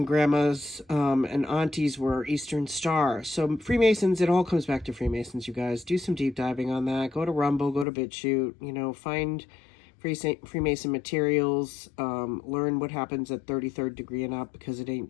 grandmas and aunties were Eastern Star. So Freemasons, it all comes back to Freemasons, you guys. Do some deep diving on that. Go to Rumble, go to BitChute, find Freemason materials, learn what happens at 33rd degree and up, because it ain't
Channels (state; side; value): drops out; right; at 7.9 s